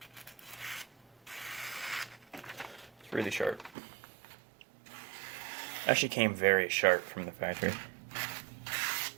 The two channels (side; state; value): left; drops out; at 3.7 s